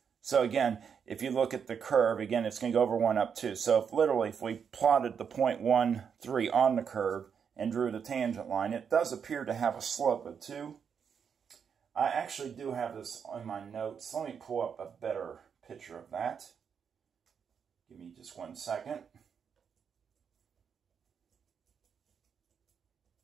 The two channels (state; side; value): quieter; left; 7.0 dB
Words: So again, if you look at the curve, again, it's going to go over 1 up 2. So if we plotted the point 1, 3 on the curve and drew the tangent line, it does appear to have a slope of 2. I actually do have this on my notes. Let me pull up a better picture of that. Give me just 1 second.